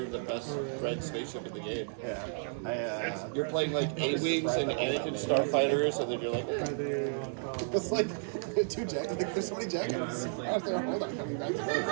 with the best red spaceship in the game. Yeah. You're playing like A-Wings and Anakin Starfighters and then you're like, It's like 2 jackets. Like, there's so many jackets. Hold on, coming back to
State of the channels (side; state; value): left; silent; digital silence